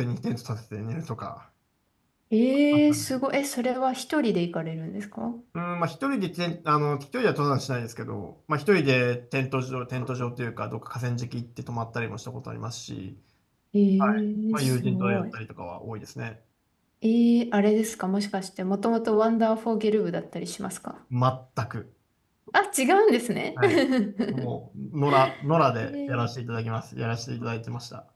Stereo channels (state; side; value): identical; both; correlation 1.00